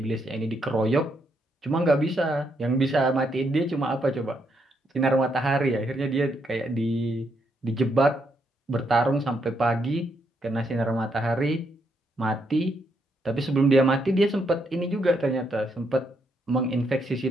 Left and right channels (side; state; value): both; normal; correlation 0.77